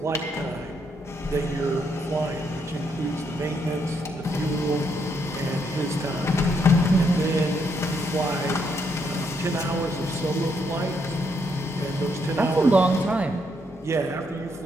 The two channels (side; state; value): both; normal; correlation 0.75